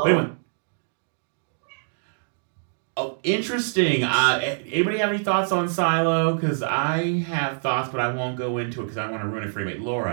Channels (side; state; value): left; silent; digital silence